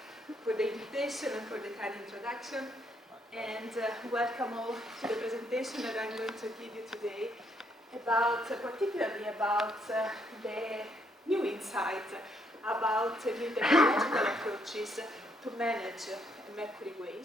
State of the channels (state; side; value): normal; both; correlation 0.72